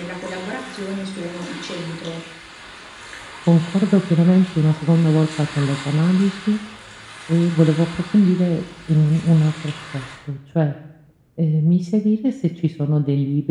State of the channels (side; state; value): both; identical; correlation 1.00